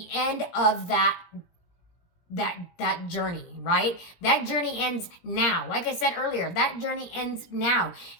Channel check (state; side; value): late; right; 17 ms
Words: end of that journey, right? That journey ends now. Like I said earlier, that journey ends now,